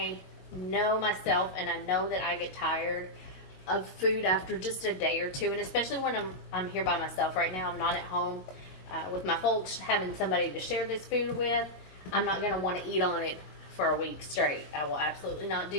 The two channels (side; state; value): right; late; 22 ms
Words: know myself, and I know that I get tired of food after just a day or two, and especially when I'm here by myself right now. I'm not at home with my folks, having somebody to share this food with. I'm not going to want to eat on it for a week straight. I will absolutely not